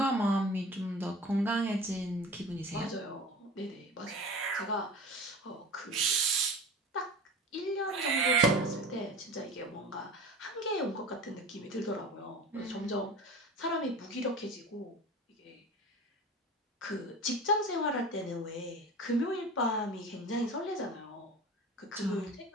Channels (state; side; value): normal; both; correlation 0.35